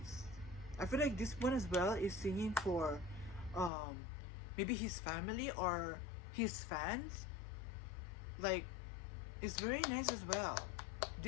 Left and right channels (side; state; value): right; drops out; at 3.7 s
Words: I feel like this one as well is singing for maybe his family or his fans. Like, it's very nice as well.